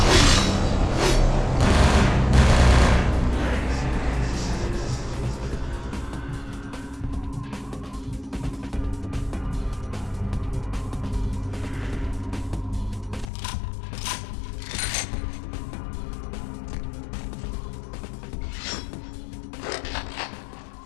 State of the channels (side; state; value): right; drops out; at 13.2 s